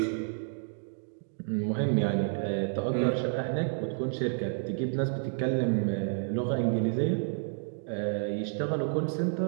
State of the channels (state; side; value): silent; left; digital silence